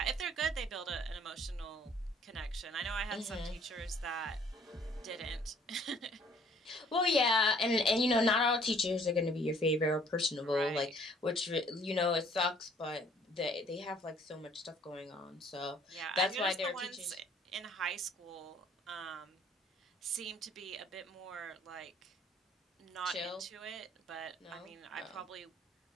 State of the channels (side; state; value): both; normal; correlation 0.59